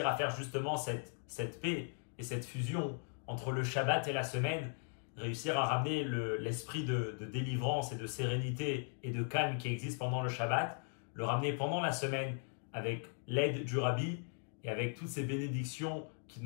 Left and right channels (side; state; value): right; silent; 52 dB below the other